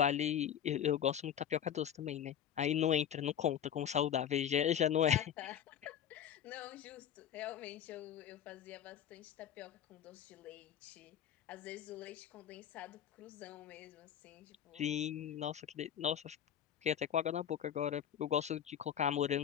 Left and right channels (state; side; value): quieter; right; 9.4 dB